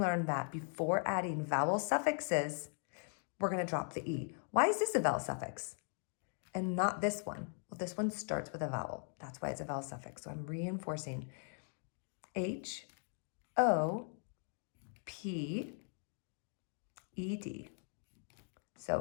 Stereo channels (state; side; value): silent; right; 51 dB below the other